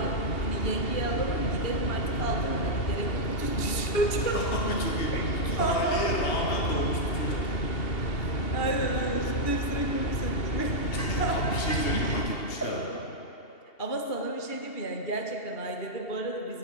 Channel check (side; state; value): right; late; 2.8 ms